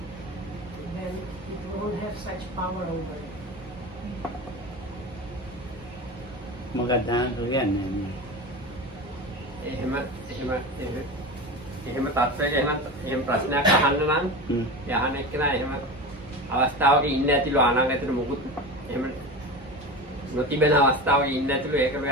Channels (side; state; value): both; normal; correlation 0.27